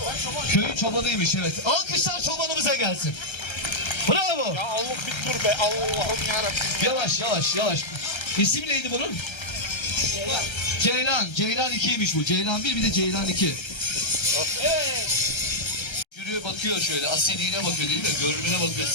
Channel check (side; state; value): right; late; 1.3 ms